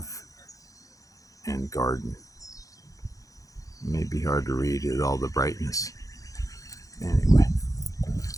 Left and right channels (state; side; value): late; right; 0.16 ms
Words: and Garden. It may be hard to read with all the brightness. Anyway,